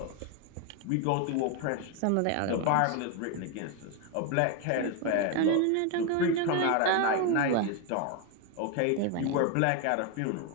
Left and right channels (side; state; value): both; different; correlation 0.01